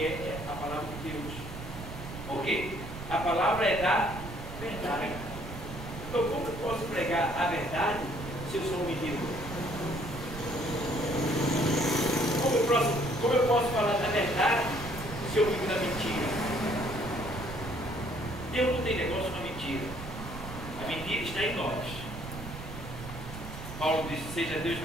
a palavra de Deus. Por quê? A palavra é da verdade. Então, como eu posso pregar a verdade se eu sou um menino? Como eu posso falar da verdade se eu vivo da mentira? Deus não tem negócio com a mentira. A mentira está em nós. Paulo disse, seja Deus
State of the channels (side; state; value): right; noise; rumble, 10 dB below the sound